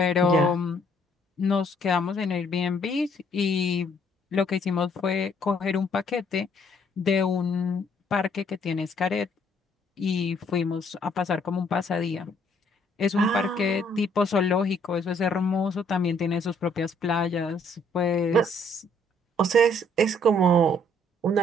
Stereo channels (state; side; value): normal; both; correlation 0.65